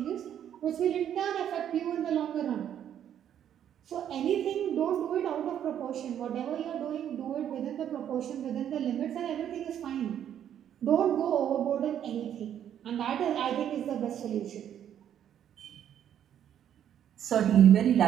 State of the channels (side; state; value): left; quieter; 9.9 dB